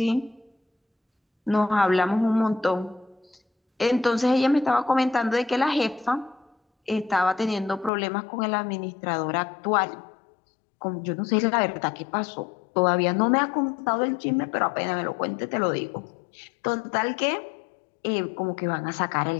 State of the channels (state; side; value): drops out; right; at 7.9 s